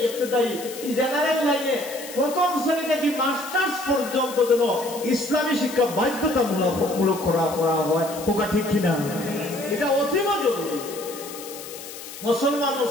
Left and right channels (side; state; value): left; noise; hiss, 13 dB below the sound